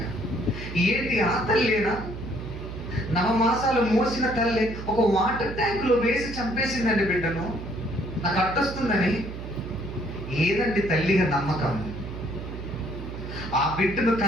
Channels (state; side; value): noise; right; hum, 9 dB below the sound